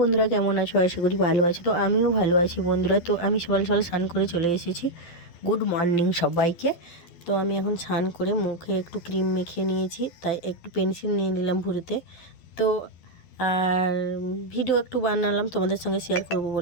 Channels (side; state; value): right; late; 12 ms